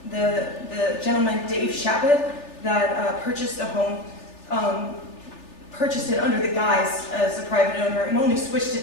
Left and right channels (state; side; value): late; right; 3.4 ms